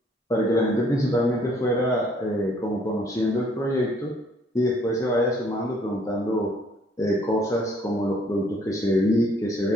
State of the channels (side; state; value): both; normal; correlation 0.62